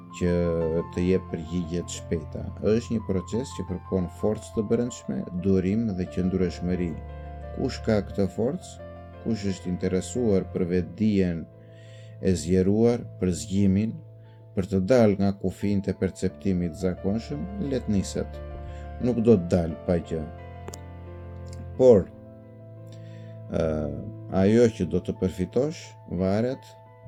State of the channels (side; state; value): both; identical; correlation 1.00